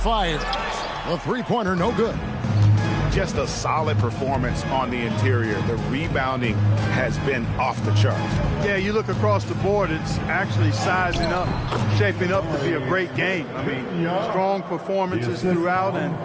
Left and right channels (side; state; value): both; identical; correlation 1.00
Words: The three-pointer no good. Just a solid performance on the interior. The rebounding has been off the charts. Yeah, you look across the board, it's actually sizing up, shaping up to be a great game. I mean, strong performances throughout,